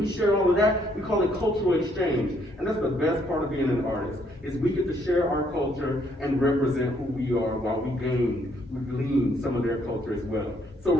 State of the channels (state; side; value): normal; both; correlation 0.69